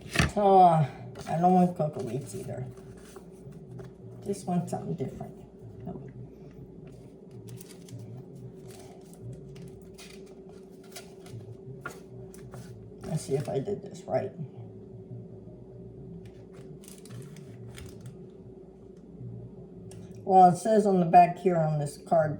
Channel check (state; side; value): identical; both; correlation 1.00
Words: Oh, I don't want cocoa wheats either. Just want something different. Oh. Let's see if I did this right. Well, it says on the back here on this card,